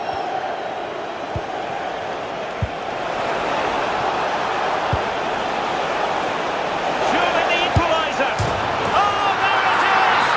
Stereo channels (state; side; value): identical; both; correlation 1.00